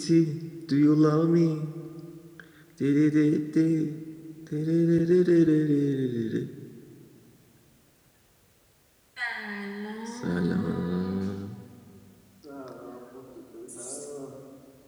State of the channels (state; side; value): identical; both; correlation 1.00